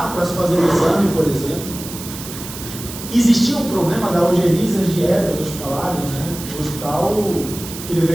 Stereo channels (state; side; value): noise; right; hiss, 11 dB below the sound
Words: para se fazer o exame, por exemplo. Existia um problema da algeriza às dietas hospitalares, né? O